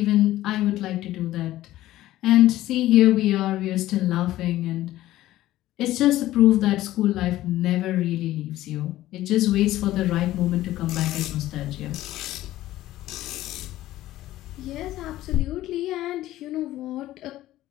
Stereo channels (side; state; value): right; quieter; 15.0 dB